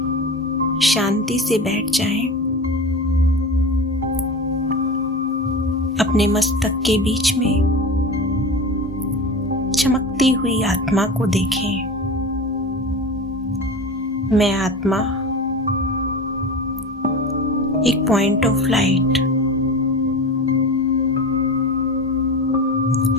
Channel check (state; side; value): normal; both; correlation 0.29